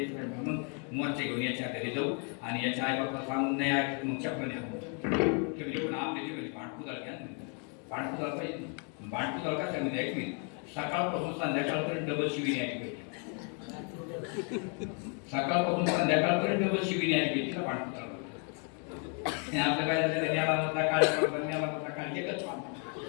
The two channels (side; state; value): right; quieter; 39.4 dB